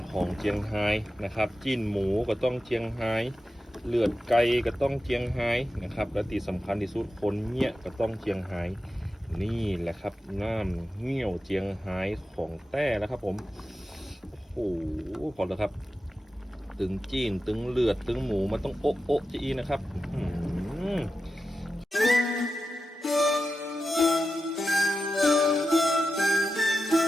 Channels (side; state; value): both; normal; correlation 0.91